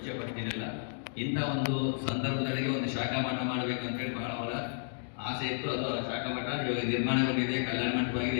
ಪಡ್ತೀನಿಲ್ಲ. ಇಂಥ ಒಂದು ಸಂದರ್ಭದೊಳಗೆ ಒಂದು ಶಾಖಾ ಮಠ ಮಾಡಬೇಕು ಅಂತ ಹೇಳಿ ಬಹಳ ಅವರ ಆಸೆ ಇತ್ತು. ಅದು ಶಾಖಾ ಮಠ ಇವಾಗ ನಿರ್ಮಾಣಗೊಂಡಿದೆ, ಕಲ್ಯಾಣ ಮಂಟಪವಾಗಿದೆ.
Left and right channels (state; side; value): silent; right; digital silence